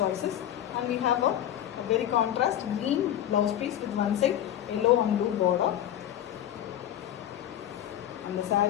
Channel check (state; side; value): quieter; right; 11.3 dB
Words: and we have a very contrast green blouse piece with one side yellow and blue border, and the